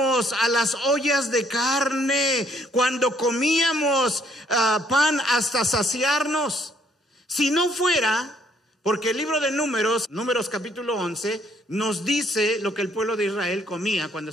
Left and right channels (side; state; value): both; normal; correlation 0.66